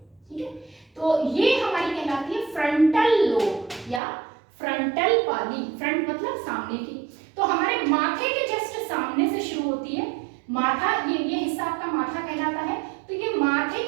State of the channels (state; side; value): drops out; left; at 4.0 s